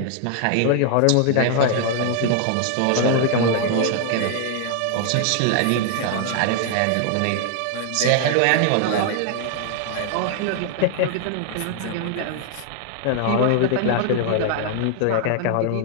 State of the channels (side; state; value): both; different; correlation 0.00